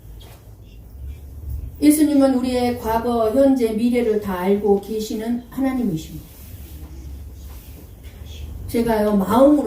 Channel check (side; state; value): both; identical; correlation 1.00